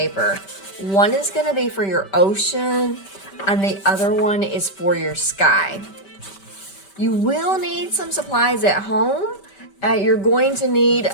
One is going to be for your ocean, and the other one is for your sky. You will need some supplies at home. You're going to need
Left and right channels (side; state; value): right; late; 5.2 ms